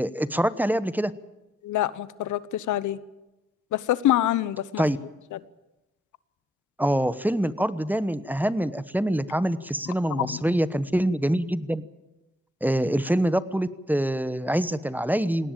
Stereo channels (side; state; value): both; normal; correlation 0.73